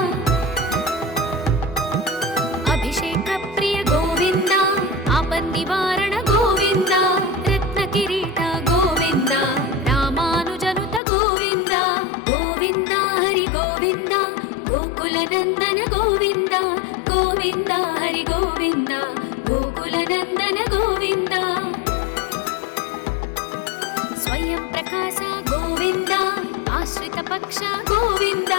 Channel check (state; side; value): drops out; right; at 11.0 s